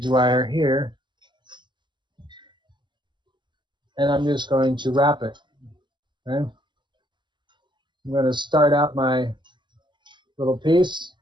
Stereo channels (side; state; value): left; late; 0.22 ms